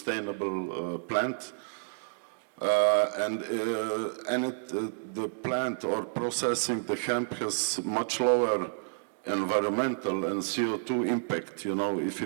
plant. The plant or processing the hemp has much lower environmental and CO2 impact. If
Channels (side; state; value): left; silent; digital silence